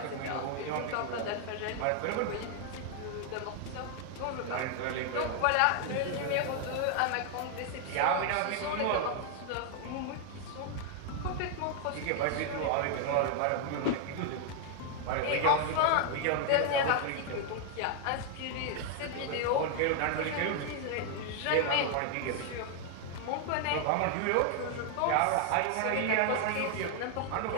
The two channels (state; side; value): different; both; correlation 0.00